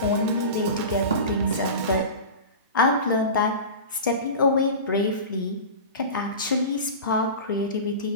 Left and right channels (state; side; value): inverted; both; correlation -0.30